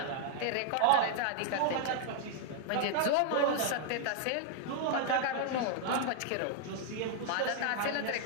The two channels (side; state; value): both; different; correlation 0.00